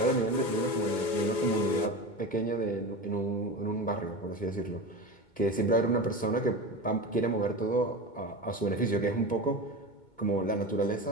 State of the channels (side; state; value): right; late; 2.2 ms